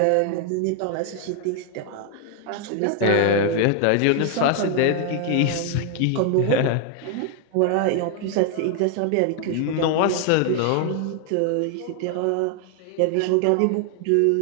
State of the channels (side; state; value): both; different; correlation 0.00